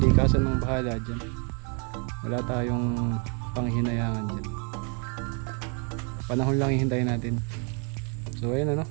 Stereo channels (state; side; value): quieter; left; 34.5 dB